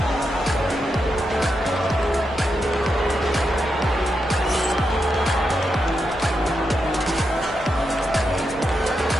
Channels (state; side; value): normal; both; correlation 0.85